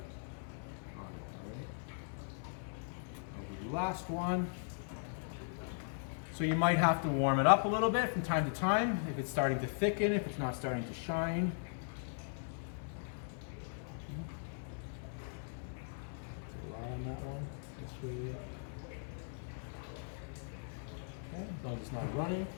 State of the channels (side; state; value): right; silent; digital silence